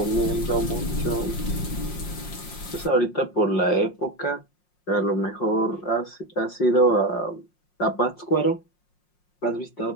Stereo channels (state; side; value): late; right; 5.6 ms